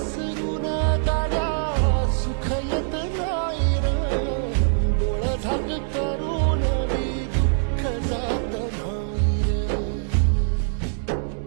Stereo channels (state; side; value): silent; left; 63 dB below the other